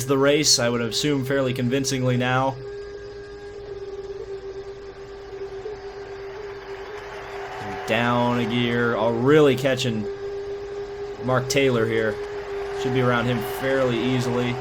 the race, I would assume fairly convincingly now. Down a gear. Oh, really catching Mark Taylor here. Should be around him fairly easily.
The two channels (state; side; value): identical; both; correlation 1.00